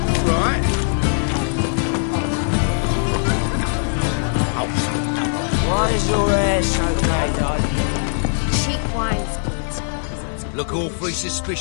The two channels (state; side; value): silent; right; digital silence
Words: Right. Why is your hair so grey, darling? Cheap wine spirits. Look awfully